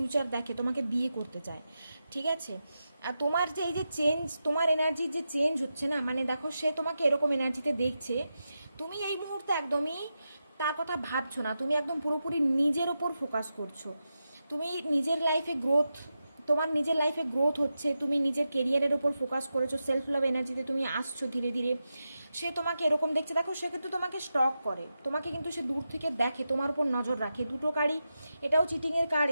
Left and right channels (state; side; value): inverted; both; correlation -0.90